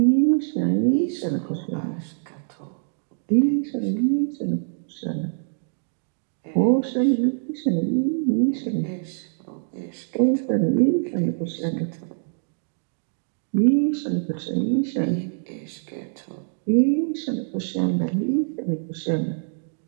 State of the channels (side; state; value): left; silent; digital silence